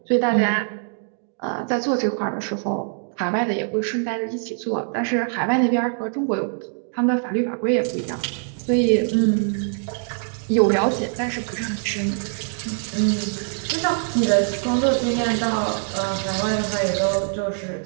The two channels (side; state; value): left; silent; 63 dB below the other